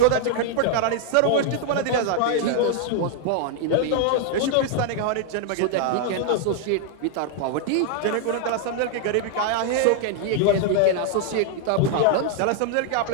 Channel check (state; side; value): different; both; correlation 0.00